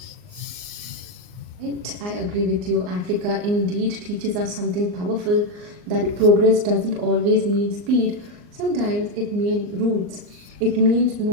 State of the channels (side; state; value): left; late; 39 ms